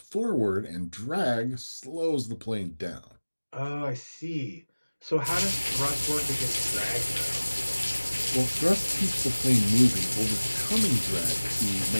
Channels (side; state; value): both; inverted; correlation -1.00